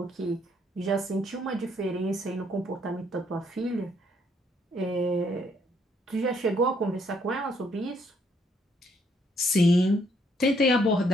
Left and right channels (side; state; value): both; normal; correlation 0.69